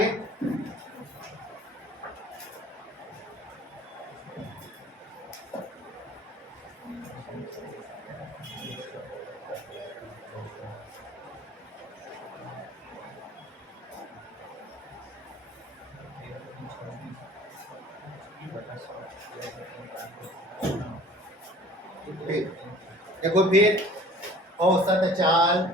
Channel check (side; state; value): both; normal; correlation 0.49